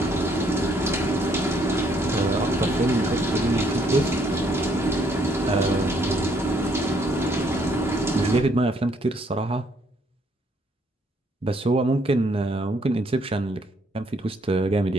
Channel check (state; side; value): normal; both; correlation 0.68